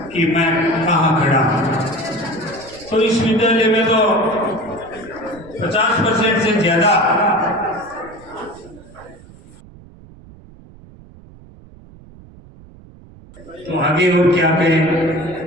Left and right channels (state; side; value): noise; right; rumble, 22 dB below the sound